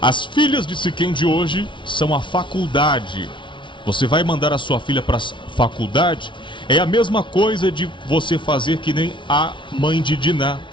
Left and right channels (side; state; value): right; late; 0.24 ms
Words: filhas de Siquém de hoje são a faculdade. Você vai mandar a sua filha para a faculdade? É a mesma coisa de você fazer que nem a mãe de Diná.